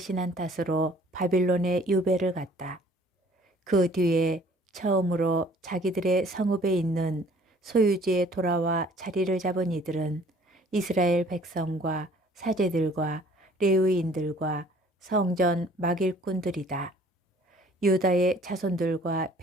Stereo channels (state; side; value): normal; both; correlation 0.55